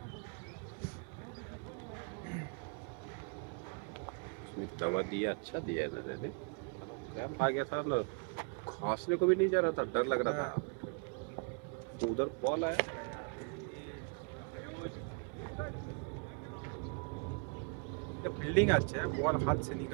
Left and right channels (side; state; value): left; quieter; 36.9 dB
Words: उसने दवा दिया, अच्छा दिया है ना ने क्रैम्प आ गया था ना, खांसने को भी नहीं जा रहा था, डर लग रहा था, तो उधर बॉल आया फील्डिंग अच्छा है, बॉल हाथ से